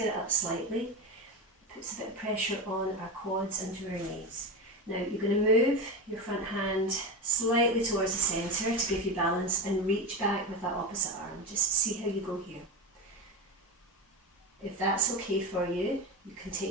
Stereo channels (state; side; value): normal; both; correlation 0.20